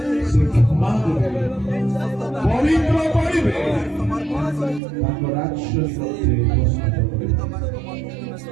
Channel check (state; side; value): drops out; left; at 4.8 s